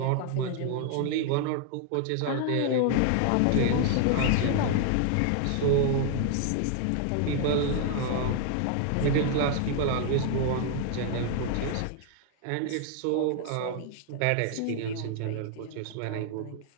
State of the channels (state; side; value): different; both; correlation 0.00